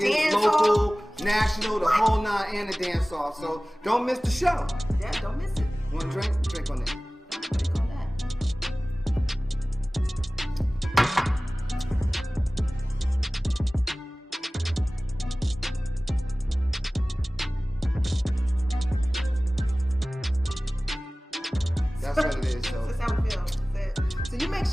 local, national, the whole nine, and the dance off. So don't miss the show. Yeah, don't miss it. Want a drink? Drink on it. Drink on that. That's what it is. So that's how we feel. So you make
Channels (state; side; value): normal; both; correlation 0.98